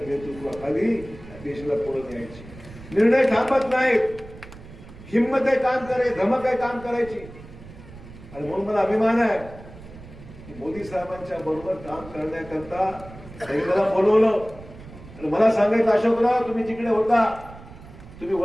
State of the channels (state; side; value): noise; right; rumble, 17 dB below the sound